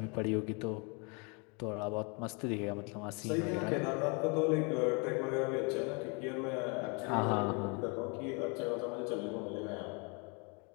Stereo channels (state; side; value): quieter; right; 33.4 dB